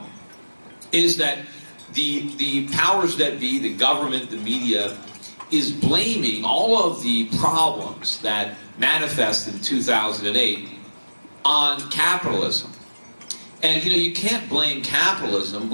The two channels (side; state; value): both; inverted; correlation -1.00